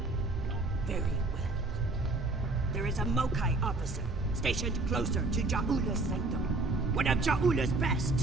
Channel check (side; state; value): left; quieter; 3.1 dB